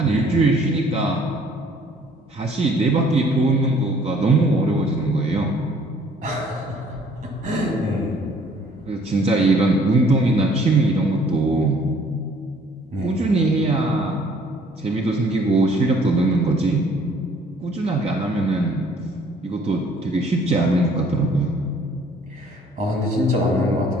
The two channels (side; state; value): both; normal; correlation 0.58